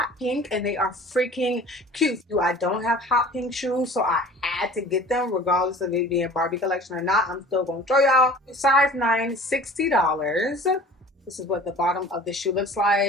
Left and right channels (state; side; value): normal; both; correlation 0.44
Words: pink, and they are freaking cute. I don't have hot pink shoes, so I had to get them, regardless of it being Barbie collection or not. I'm still gonna show y'all. Size 9, $60. This is what the bottom of the shoe looks